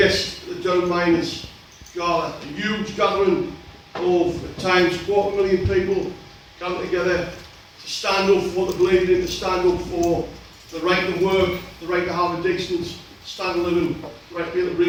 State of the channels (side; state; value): both; identical; correlation 1.00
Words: at the Durham Miners Gala, a huge gathering of, at times, 250,000 people gathered together to stand up for what they believed in, to stand up for the right to work, the right to have a decent standard of living, the right to be able to